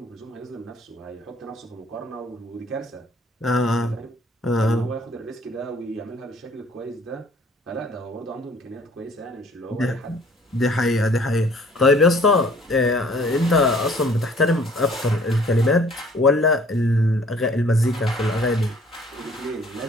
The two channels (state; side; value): normal; both; correlation 0.56